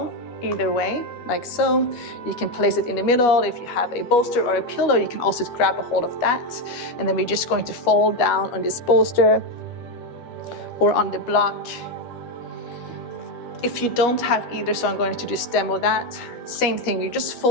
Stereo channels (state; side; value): late; right; 12 ms